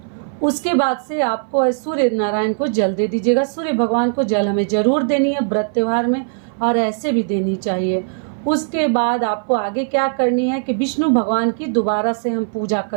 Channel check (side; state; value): left; silent; 59 dB below the other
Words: उसके बाद से आपको सूर्य नारायण को जल दे दीजिएगा। सूर्य भगवान को जल हमें जरूर देनी है व्रत त्योहार में, और ऐसे भी देनी चाहिए। उसके बाद आपको आगे क्या करनी है कि विष्णु भगवान की दोबारा से हम पूजा